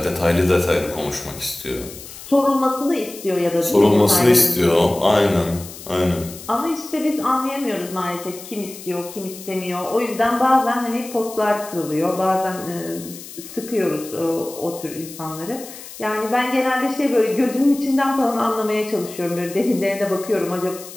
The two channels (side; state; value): left; noise; hiss, 15 dB below the sound